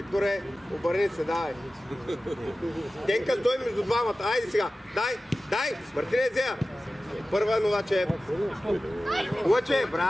обърни се, давай. Денка, стой между двамата. Айде сега. Дай. Мартине Зея. Първа Новачев. Лъче,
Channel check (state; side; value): normal; both; correlation 0.96